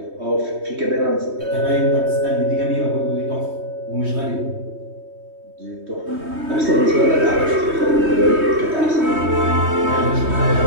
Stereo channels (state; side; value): late; left; 3.2 ms